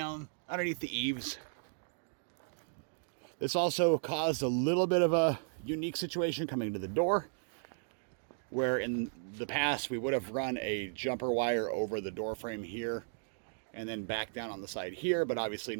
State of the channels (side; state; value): left; silent; digital silence